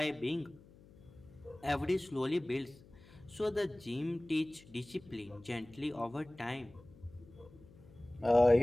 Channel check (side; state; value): left; noise; hum, 23 dB below the sound